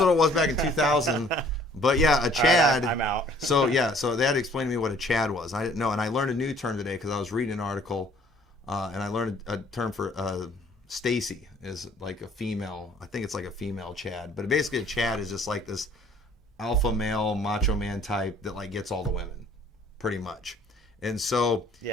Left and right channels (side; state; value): both; normal; correlation 0.57